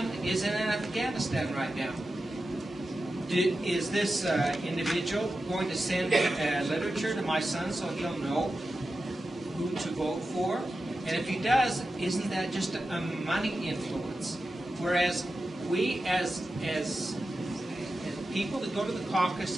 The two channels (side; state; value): both; normal; correlation 0.92